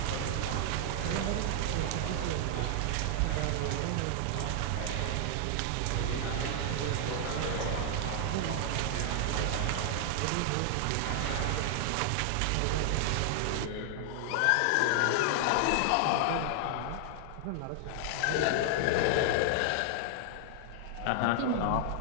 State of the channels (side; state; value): both; different; correlation 0.00